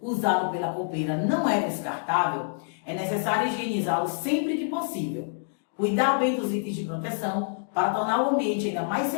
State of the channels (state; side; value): silent; right; digital silence